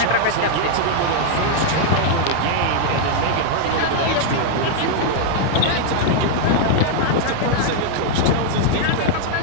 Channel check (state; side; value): different; both; correlation 0.00